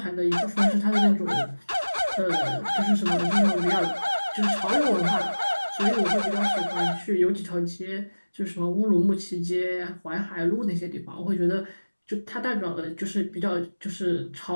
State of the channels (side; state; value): both; inverted; correlation -1.00